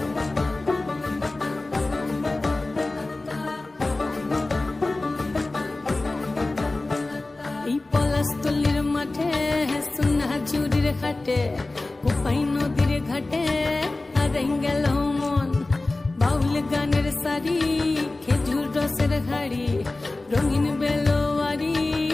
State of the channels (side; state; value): right; quieter; 3.0 dB